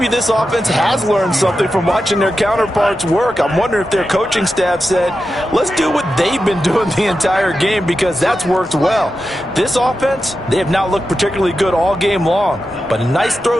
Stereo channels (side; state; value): both; normal; correlation 0.90